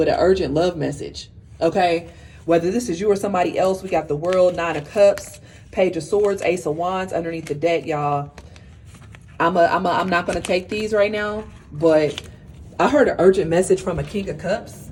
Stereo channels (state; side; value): identical; both; correlation 1.00